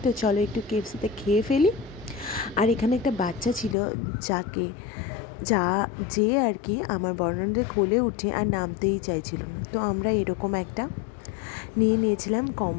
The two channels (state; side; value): drops out; right; at 3.8 s